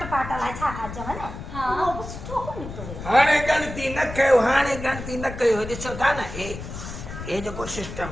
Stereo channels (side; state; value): left; noise; rumble, 10 dB below the sound